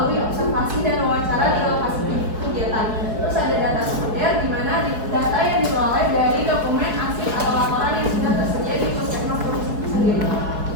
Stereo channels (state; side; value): late; left; 4.7 ms